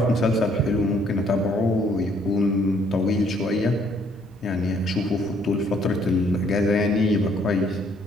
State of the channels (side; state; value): both; normal; correlation 0.65